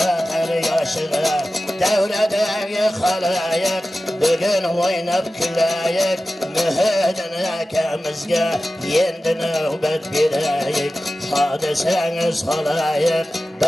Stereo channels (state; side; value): normal; both; correlation 0.95